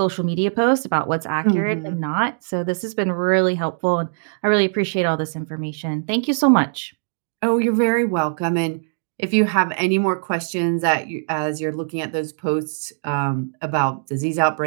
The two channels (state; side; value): silent; left; digital silence